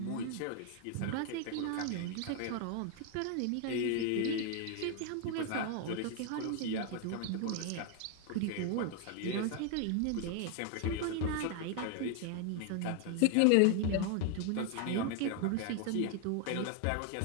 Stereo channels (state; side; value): different; both; correlation 0.00